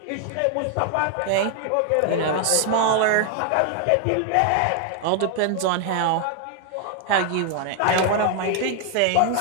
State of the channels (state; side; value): different; both; correlation 0.00